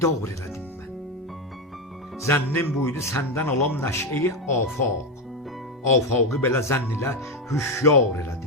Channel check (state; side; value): normal; both; correlation 0.11